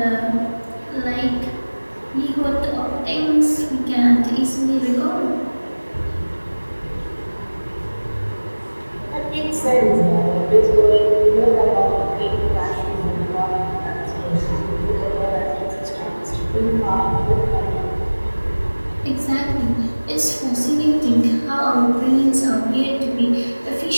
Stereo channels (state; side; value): inverted; both; correlation -1.00